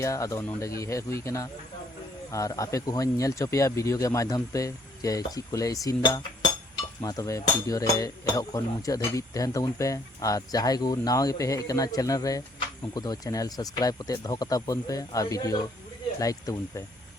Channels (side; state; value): both; normal; correlation 0.64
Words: आदो नोडे गी हे हुई कना और आपे को हों नेल चोपिया वीडियो के माध्यम पे जे ची कोले इसिन दा मा तबे वीडियो रे एहो खन मुचा धबी तहन तबुन पे और जहाय को नावा गे पे हे कना चैनल रे उनको दो चैनल सब्सक्राइब कते दो कता बन पे और वीडियो लाइक तबुन पे